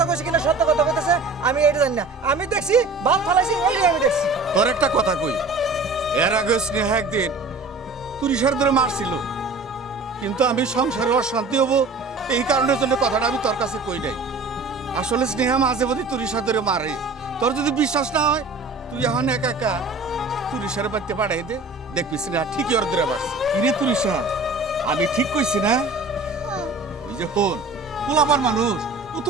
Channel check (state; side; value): quieter; left; 3.5 dB